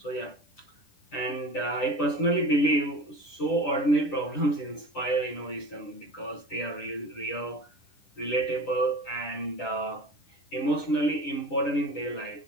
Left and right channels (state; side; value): late; right; 10 ms